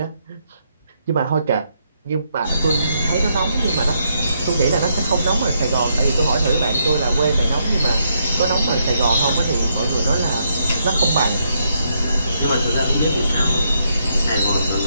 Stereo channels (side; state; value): both; inverted; correlation -0.77